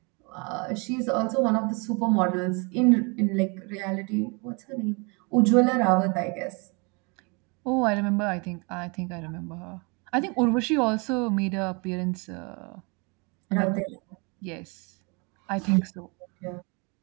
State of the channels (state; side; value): quieter; left; 31.4 dB